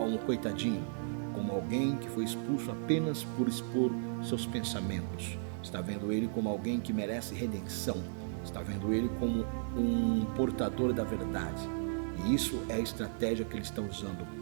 coitadinho, como alguém que foi expulso apenas por expor seus pensamentos. Está vendo ele como alguém que merece redenção. Está vendo ele como um portador da verdade. E isso é a estratégia que ele está usando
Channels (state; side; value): silent; left; digital silence